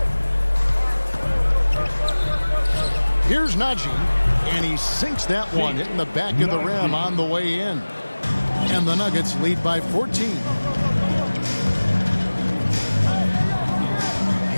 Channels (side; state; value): both; inverted; correlation -1.00